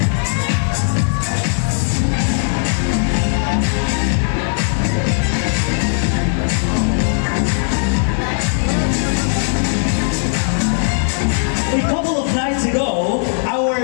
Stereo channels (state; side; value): silent; right; 68 dB below the other